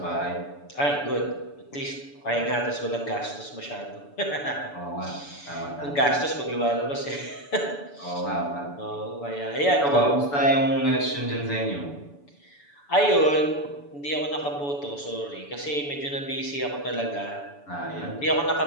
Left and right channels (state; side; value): late; right; 7.0 ms